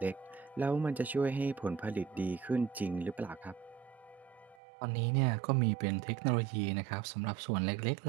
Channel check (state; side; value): drops out; left; at 4.5 s